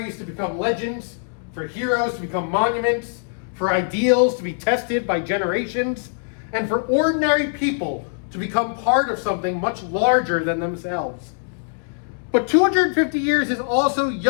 to become legends, for heroes to become monuments, for ideals to be tested by generations, and for ordinary people to become part of something much larger than themselves. But 250 years is also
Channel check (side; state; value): right; silent; 64 dB below the other